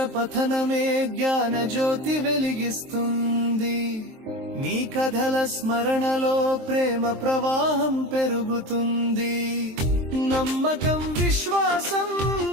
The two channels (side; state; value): left; late; 23 ms